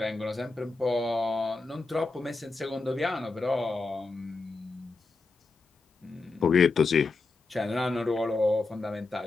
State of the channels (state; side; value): quieter; right; 3.7 dB